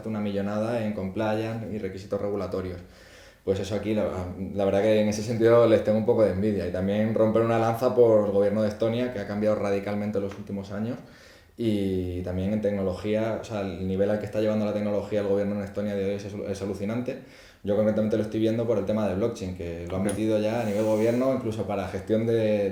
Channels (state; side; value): identical; both; correlation 1.00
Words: una millonada en compliance y requisitos regulatorios. Pues eso aquí, la verdad que en ese sentido les tengo un poco de envidia. Y también romper una lanza por el gobierno de Estonia, que ha cambiado radicalmente en los últimos años. Y también en tecnología, o sea, el nivel al que está llevando la tecnología el gobierno en Estonia de hoy es alucinante. Yo concretamente lo estoy viendo por el tema de blockchain, que lo han metido ya a nivel gobierno, incluso para gestión de